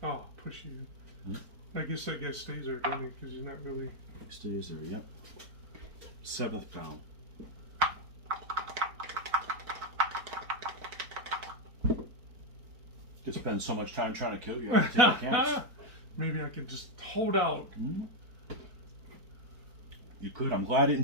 Oh, push you. I guess that guy stays there, doesn't he? Because he's not really. Stays there. Yep. 7th pound. You spend so much time trying to kill you. I have to take a chance. Maybe I can just hold out. You could. I'm glad I didn't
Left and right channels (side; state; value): left; late; 4.4 ms